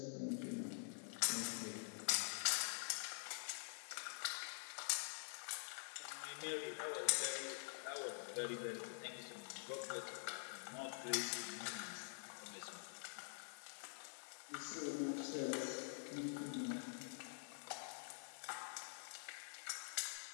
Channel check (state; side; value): silent; right; digital silence